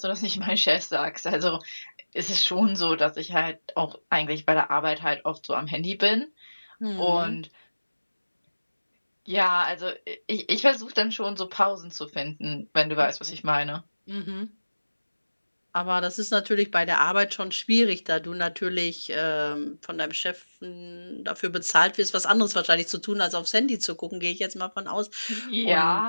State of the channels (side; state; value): both; inverted; correlation -1.00